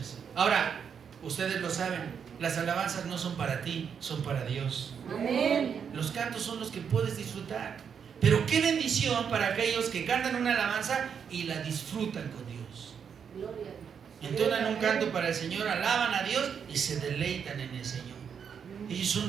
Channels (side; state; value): left; quieter; 7.2 dB